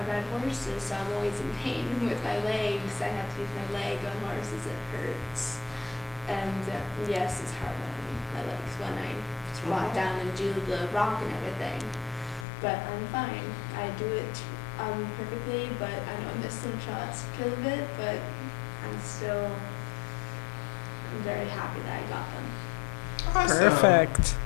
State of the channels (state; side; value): drops out; right; at 12.5 s